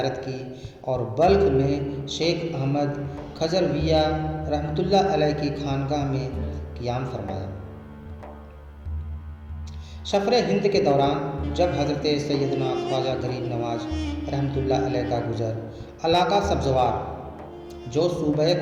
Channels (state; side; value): identical; both; correlation 1.00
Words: کی اور بلخ میں شیخ احمد کھجرویہ رحمۃ اللہ علیہ کی خانقاہ میں قیام فرمایا۔ سفر ہند کے دوران جب حضرت سیدنا خواجہ غریب نواز رحمۃ اللہ علیہ کا گزر علاقہ سبزوار جو صوبہ